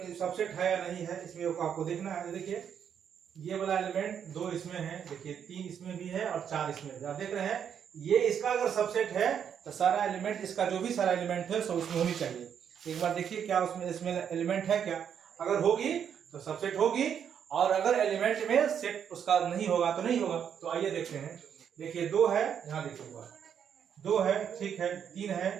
सबसेट है या नहीं है, इसमें आपको देखना है। देखिए, ये वाला एलिमेंट 2 इसमें है, देखिए 3 इसमें भी है और 4 इसमें भी। आप देख रहे हैं, ये इसका अगर सबसेट है तो सारा एलिमेंट, इसका जो भी सारा एलिमेंट है सब उसमें होनी चाहिए। एक बार देखिए क्या इसमें एलिमेंट है क्या। अगर होगी तो सबसेट होगी, और अगर एलिमेंट में सेट उसका नहीं होगा तो नहीं होगा। तो आइए देखते हैं। देखिए 2 है, यहाँ देखिएगा 2 है, ठीक है, 3 है,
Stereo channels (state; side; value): quieter; left; 8.2 dB